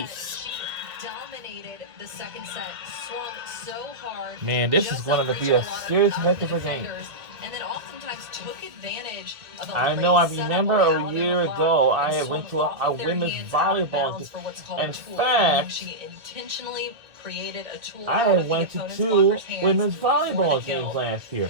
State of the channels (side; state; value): left; late; 2.2 ms